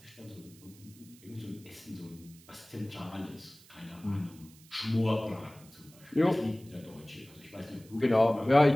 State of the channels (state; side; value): noise; right; hiss, 24 dB below the sound